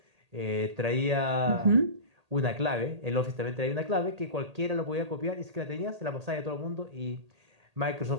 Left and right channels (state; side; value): late; left; 1.8 ms